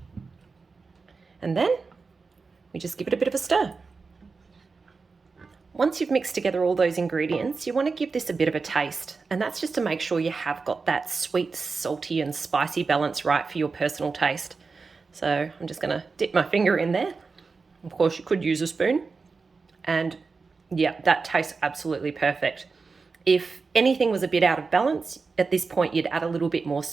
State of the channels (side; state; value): left; quieter; 4.5 dB